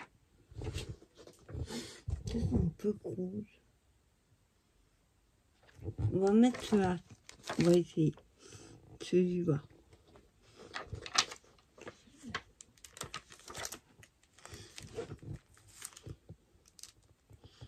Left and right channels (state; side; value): identical; both; correlation 1.00